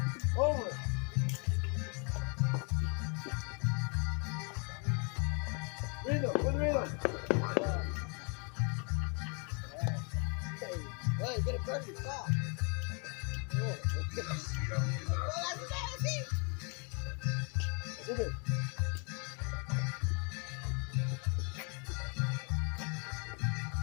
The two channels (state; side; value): quieter; right; 36.1 dB